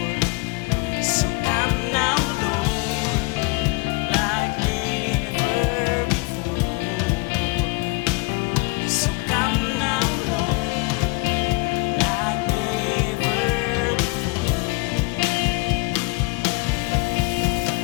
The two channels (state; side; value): quieter; right; 26.5 dB